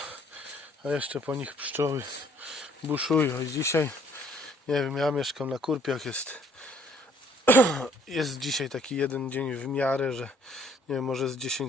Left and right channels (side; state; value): both; normal; correlation 0.61